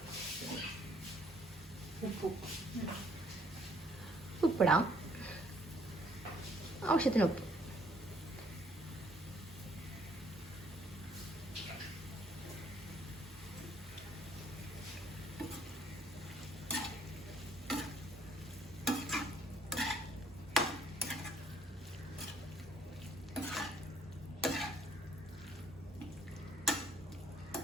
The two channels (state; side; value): normal; both; correlation 0.64